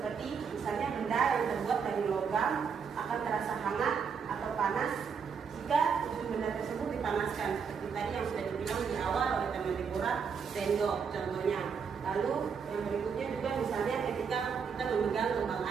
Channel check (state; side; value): quieter; left; 6.3 dB